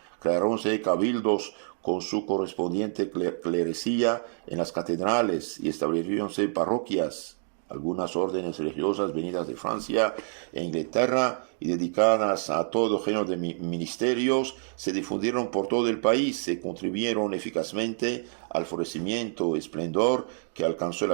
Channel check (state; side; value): silent; left; digital silence